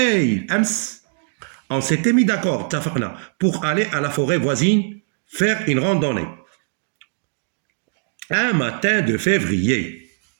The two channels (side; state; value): left; silent; digital silence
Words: On s'était mis d'accord, pour aller à la forêt voisine faire une randonnée. Un matin de février,